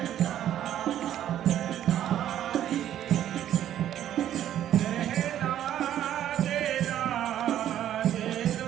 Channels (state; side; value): quieter; left; 11.2 dB